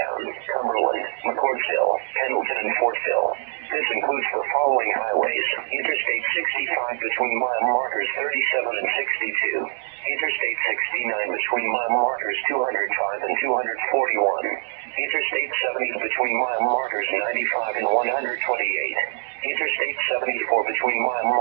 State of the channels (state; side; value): silent; left; digital silence